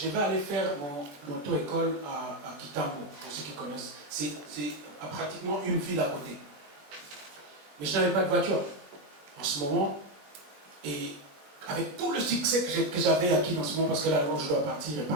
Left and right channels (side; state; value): left; late; 21 ms